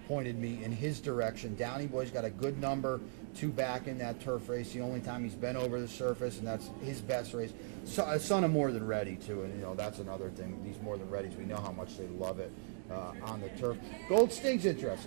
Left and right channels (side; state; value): left; silent; digital silence